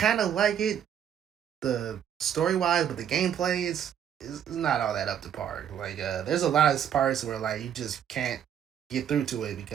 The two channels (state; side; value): quieter; left; 9.2 dB